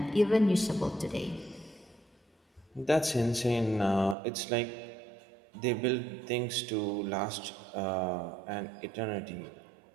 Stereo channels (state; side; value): drops out; left; at 4.2 s